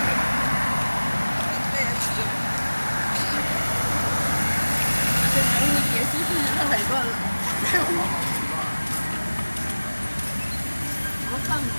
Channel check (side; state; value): both; inverted; correlation -1.00